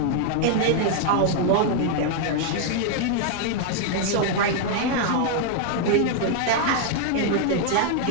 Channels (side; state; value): both; different; correlation 0.00